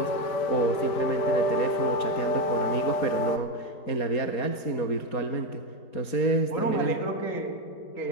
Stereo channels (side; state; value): right; late; 4.3 ms